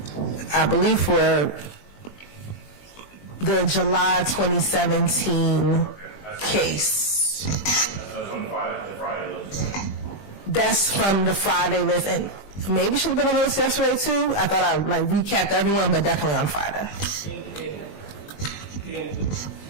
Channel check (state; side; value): late; right; 20 ms